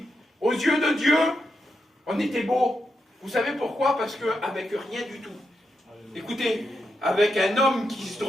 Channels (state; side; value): normal; both; correlation 0.84